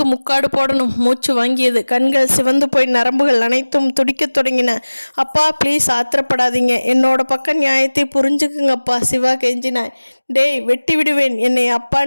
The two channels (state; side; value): inverted; both; correlation -1.00